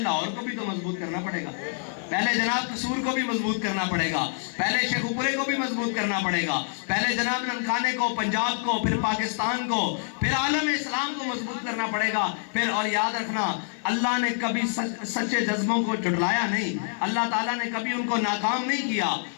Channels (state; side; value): silent; right; digital silence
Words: کو بھی تو مضبوط کرنا پڑے گا, پہلے جناب قصور کو بھی مضبوط کرنا پڑے گا, پہلے شیخ پورے کو بھی مضبوط کرنا پڑے گا, پہلے جناب ننکانے کو, پنجاب کو, پھر پاکستان کو, پھر عالم اسلام کو مضبوط کرنا پڑے گا. پھر اور یاد رکھنا اللہ نے کبھی سچے جذبوں کو جھٹلایا نہیں, اللہ تعالیٰ نے کبھی ان کو ناکام نہیں کیا,